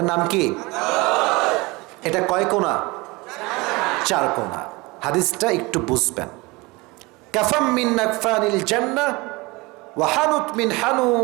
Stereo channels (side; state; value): left; quieter; 24.1 dB